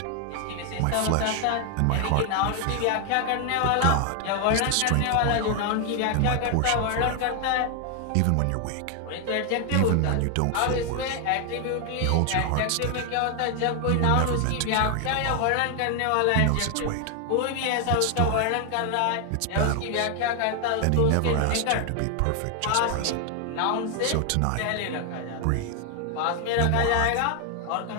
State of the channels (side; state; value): both; different; correlation 0.00